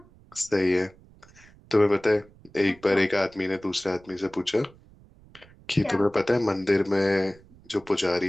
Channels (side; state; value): right; noise; rumble, 26 dB below the sound